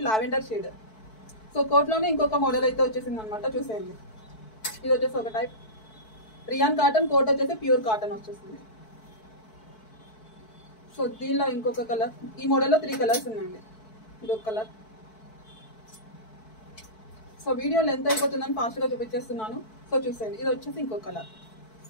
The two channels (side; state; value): right; late; 4.6 ms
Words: లావెండర్ షేడ్. సో కోట్ లోనే ఇంకొక మోడల్ అయితే వచ్చేసింది అనమాట. చూసేయండి, ఇది వచ్చేసి ఒక టైప్ రియాన్ కాటన్. కోట్ వచ్చేసి ప్యూర్ కాటన్ వచ్చేసింది. సో దీనిలో ఇంకొక కలర్. ఈ మోడల్లో 3 కలర్స్ ఉన్నాయండి. ఇది ఒక కలర్. సో వీడియో లెంత్ అయిపోతుందని ఫాస్ట్గా చూపించేస్తున్నాను. సో చూసేయండి, ఇది వచ్చేసి ఇంకో కలర్.